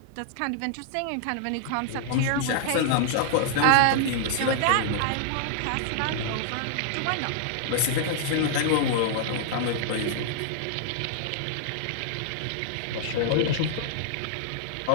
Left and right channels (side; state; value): both; different; correlation -0.01